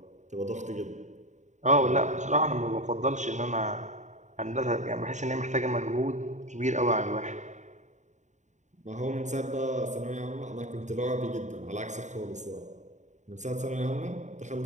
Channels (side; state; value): left; late; 0.34 ms